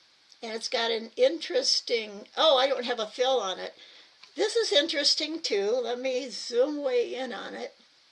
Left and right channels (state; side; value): identical; both; correlation 1.00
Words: And it's got an interesting, oh, I don't have a fill on it. This is interesting too. Let me zoom way in on it.